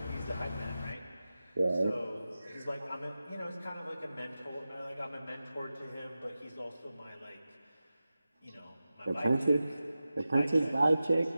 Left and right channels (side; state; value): both; inverted; correlation -0.94